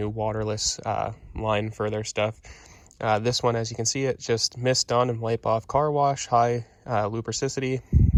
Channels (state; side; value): identical; both; correlation 1.00